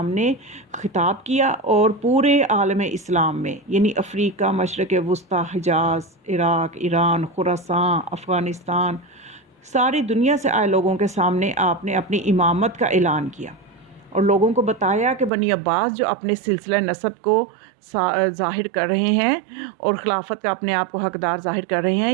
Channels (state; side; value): drops out; left; at 15.3 s